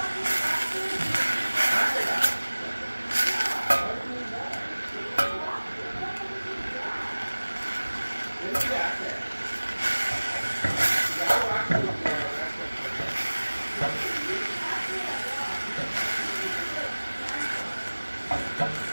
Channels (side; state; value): both; inverted; correlation -1.00